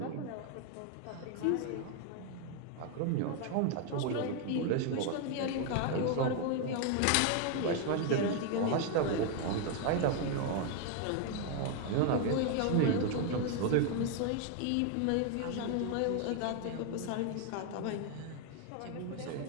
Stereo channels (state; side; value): different; both; correlation 0.00